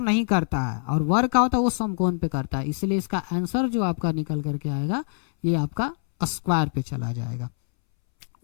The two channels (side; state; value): right; silent; 62 dB below the other